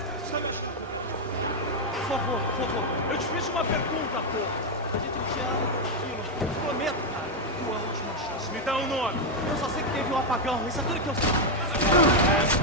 Por favor, eu te fiz uma pergunta, porra. A gente te ama, tranquilo. Eu te prometo, cara. Tua última chance. Me dá um nome. Eu só sei que teve um apagão. Isso é tudo que eu sei.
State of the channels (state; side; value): normal; both; correlation 0.02